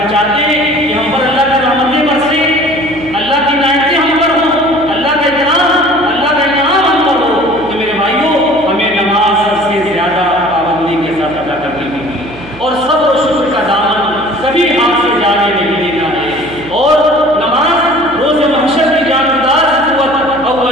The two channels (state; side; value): noise; right; hum, 19 dB below the sound